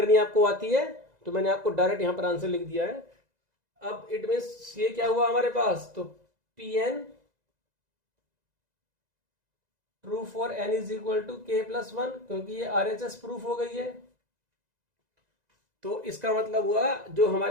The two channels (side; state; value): left; late; 2.0 ms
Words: आपको आती है तो मैंने आपको डायरेक्ट यहां पर आंसर लिख दिया है। अब इट मीन्स ये क्या हुआ हमारे पास, तो Pn true for n is equal to k+1, क्योंकि ये RHS प्रूफ हो गई है। तो इसका मतलब हुआ जो